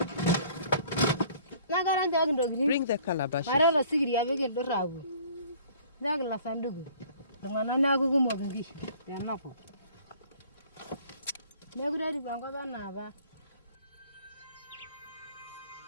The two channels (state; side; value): inverted; both; correlation -0.53